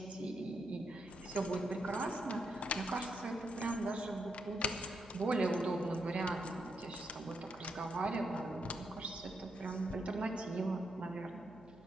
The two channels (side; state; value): right; noise; hum, 21 dB below the sound